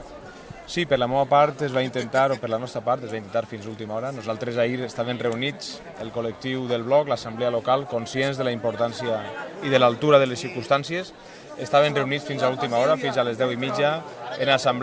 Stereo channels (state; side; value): identical; both; correlation 1.00